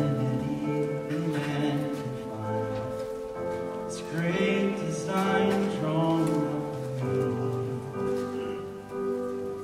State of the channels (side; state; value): both; identical; correlation 1.00